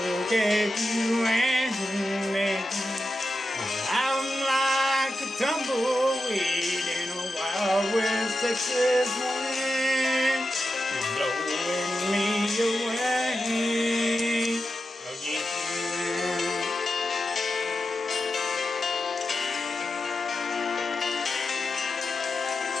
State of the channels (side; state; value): both; normal; correlation 0.90